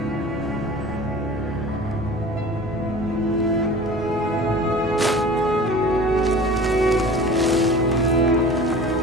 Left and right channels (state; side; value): normal; both; correlation 0.40